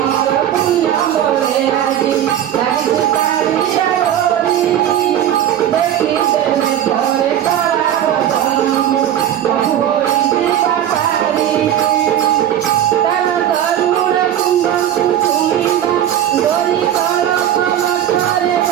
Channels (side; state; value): left; quieter; 10.9 dB